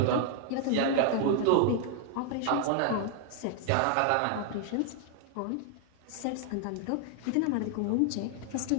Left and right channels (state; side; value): different; both; correlation 0.00